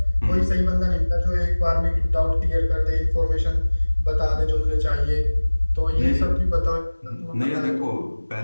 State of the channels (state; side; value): inverted; both; correlation -1.00